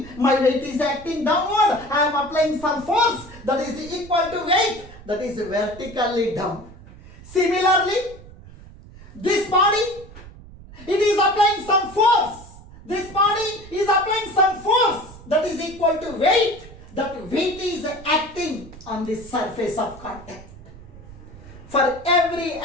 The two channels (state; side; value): noise; right; rumble, 18 dB below the sound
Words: my weight is acting downward. I am applying some force that is equal to weight that is vertically down. Similarly, this body, it is applying some force. This body is applying some force that is equal to weight. That weight is acting on the surface of contact. For every